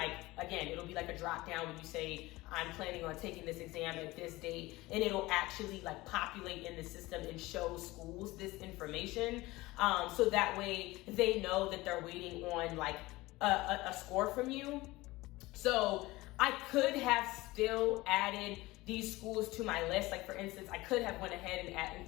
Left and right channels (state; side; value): quieter; right; 19.9 dB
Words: be like a drop down when you say I'm planning on taking this exam at this date, and it'll actually populate in the system and show schools this information, so that way they know that they're waiting on a score from you. So I could have still added these schools to my list. Like for instance, I could have went ahead